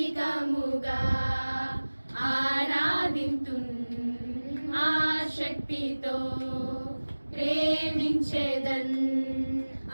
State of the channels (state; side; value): inverted; both; correlation -1.00